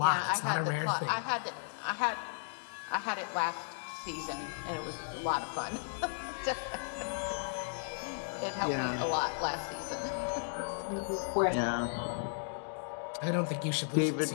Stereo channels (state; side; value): silent; right; digital silence